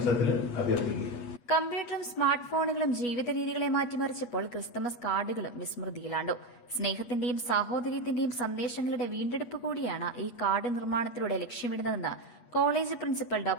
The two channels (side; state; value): right; late; 8.3 ms